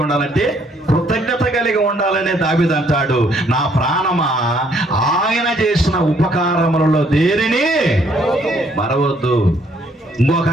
ఉండాలంటే కృతజ్ఞత కలిగి ఉండాలనే దావీదు అంటాడు, నా ప్రాణమా ఆయన చేసిన ఉపకారములలో దేనిని మరవద్దు. ఇంకొక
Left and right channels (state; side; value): normal; both; correlation 0.66